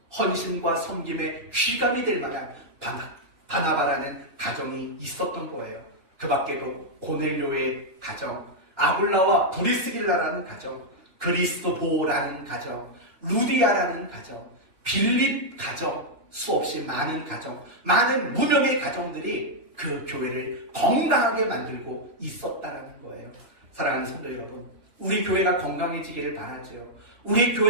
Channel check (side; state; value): left; late; 2.8 ms